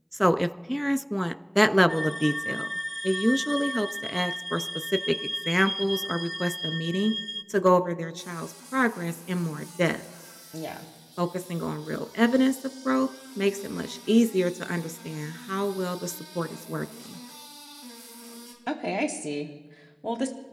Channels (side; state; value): both; identical; correlation 1.00